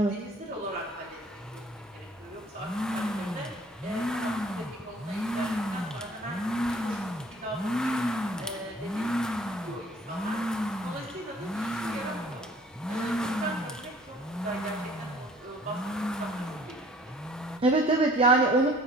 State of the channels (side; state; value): both; normal; correlation 0.54